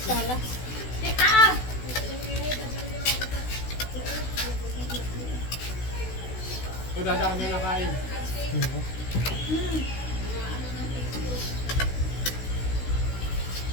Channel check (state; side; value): late; right; 16 ms